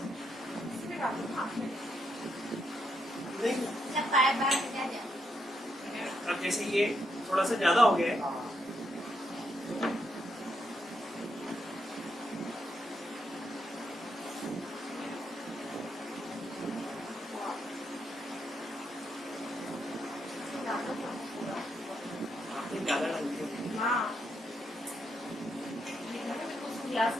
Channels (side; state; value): both; normal; correlation 0.79